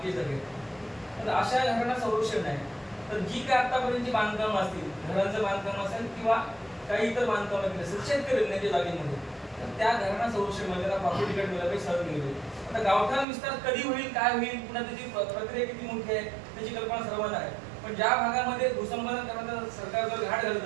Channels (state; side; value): drops out; left; at 13.2 s